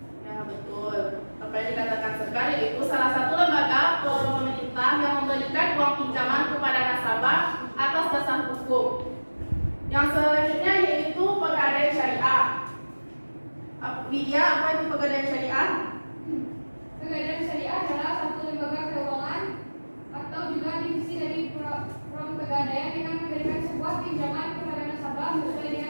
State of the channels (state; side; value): inverted; both; correlation -1.00